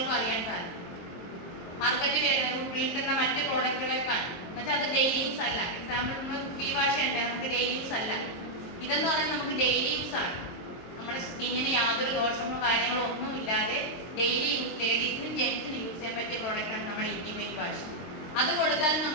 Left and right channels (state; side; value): late; right; 23 ms